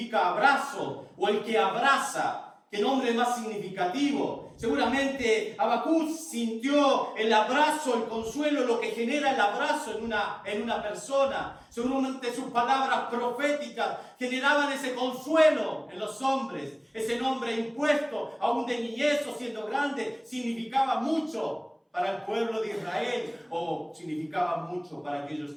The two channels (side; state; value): both; identical; correlation 1.00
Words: abrazo, o el que abraza. ¿Qué nombre más significativo? Seguramente Habacuc sintió el abrazo, el consuelo, lo que genera el abrazo en una persona. Seguramente sus palabras proféticas generaban ese consuelo en los hombres. Ese nombre impuesto, aún de niñez o siendo grande, significaba mucho. para el pueblo de Israel, significaba mucho para aquellos